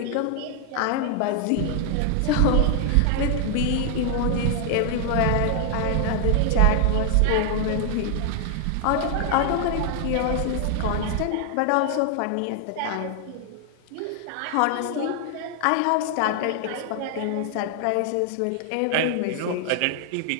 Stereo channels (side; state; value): both; different; correlation 0.00